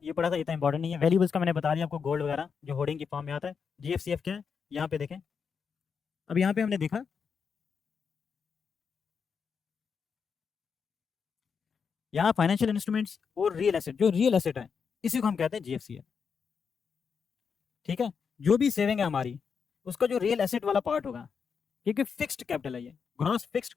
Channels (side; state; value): right; quieter; 6.2 dB